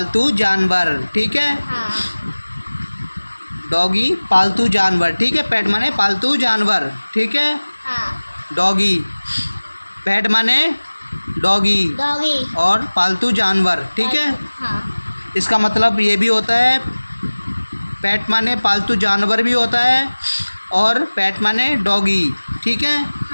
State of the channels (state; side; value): inverted; both; correlation -1.00